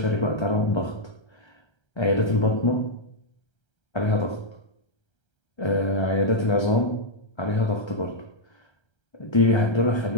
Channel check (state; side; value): late; right; 1.3 ms